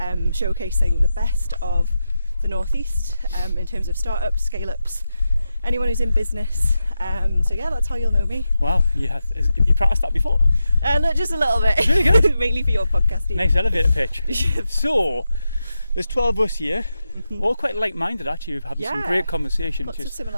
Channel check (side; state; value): both; inverted; correlation -0.90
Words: the best of the Northeast in terms of startups, scale-ups, anyone who's in business. So yeah, that's how you'll know me. Wow, you practiced that before? Look, just a little bit. It's really good. Mainly for your podcasting. Nice elevator pitch. So, there's 12 of us here, all quite like-minded actually. We've had some great conversations. Lots of